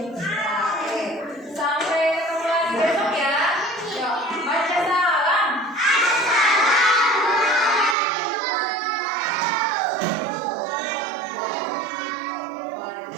Oke. Sampai ketemu lagi besok ya. Yuk, baca salam.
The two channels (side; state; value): left; drops out; at 8.0 s